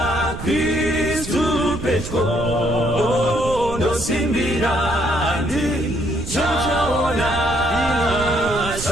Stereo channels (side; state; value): right; noise; rumble, 9 dB below the sound